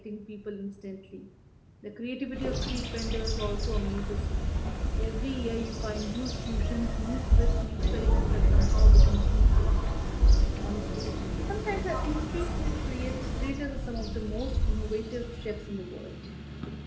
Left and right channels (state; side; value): identical; both; correlation 1.00